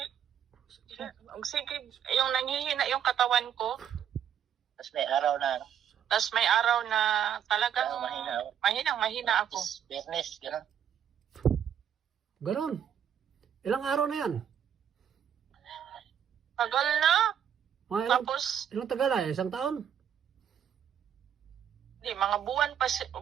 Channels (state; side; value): quieter; left; 9.0 dB